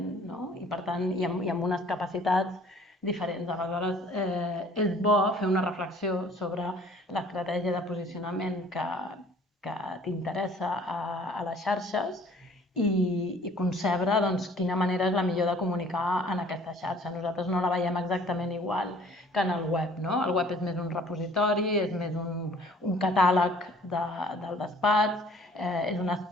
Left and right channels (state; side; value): normal; both; correlation 0.54